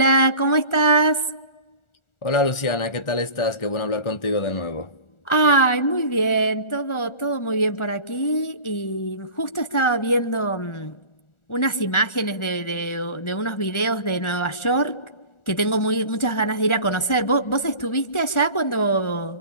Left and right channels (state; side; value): late; right; 1.4 ms